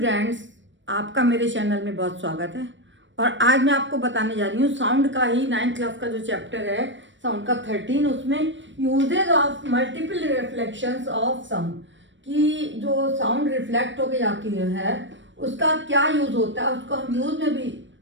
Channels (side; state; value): left; late; 0.54 ms